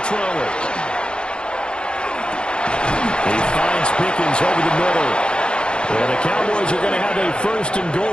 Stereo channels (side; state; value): right; late; 0.052 ms